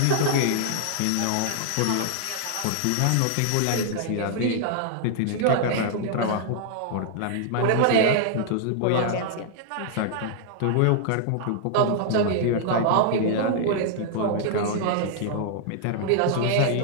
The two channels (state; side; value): different; both; correlation -0.01